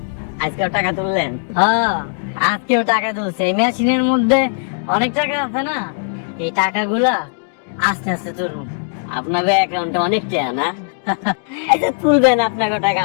আজকেও টাকা তুললেন? হ্যাঁ, আজকেও টাকা তুলছে। এই মেশিনের মধ্যে অনেক টাকা আছে না, এই টাকাগুলা আস্তে আস্তে তুলুন। আপনাদের অ্যাকাউন্টে অনেক টাকা না? আচ্ছা তুলবেন, আপনাকে টাকা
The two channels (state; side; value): silent; right; digital silence